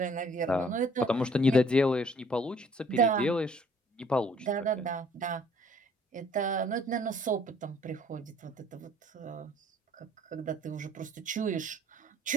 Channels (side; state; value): both; normal; correlation 0.58